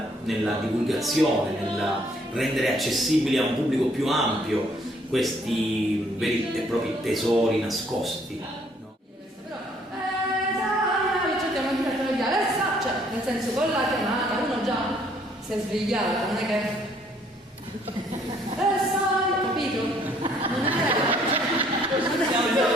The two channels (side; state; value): both; normal; correlation 0.64